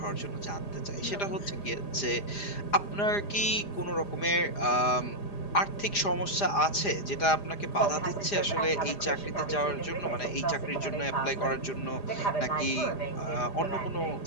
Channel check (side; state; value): right; late; 4.9 ms